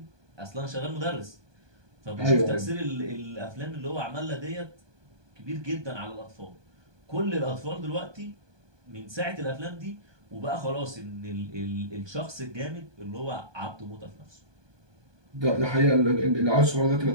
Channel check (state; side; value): late; left; 1.2 ms